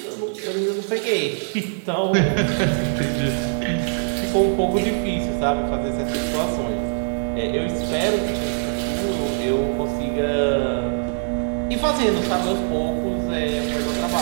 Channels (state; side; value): silent; left; 58 dB below the other